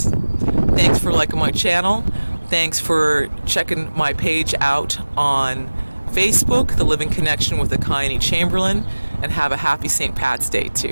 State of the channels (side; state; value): both; inverted; correlation -1.00